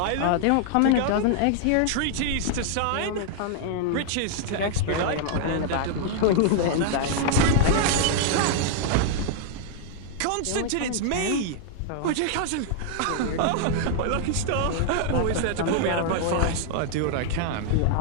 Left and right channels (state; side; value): different; both; correlation 0.00